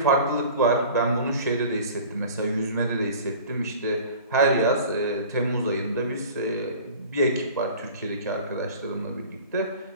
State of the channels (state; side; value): inverted; both; correlation -0.42